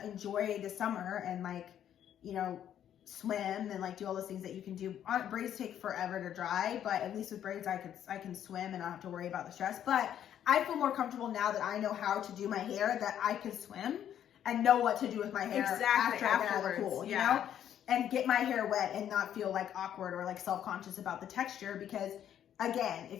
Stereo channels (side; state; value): right; quieter; 10.2 dB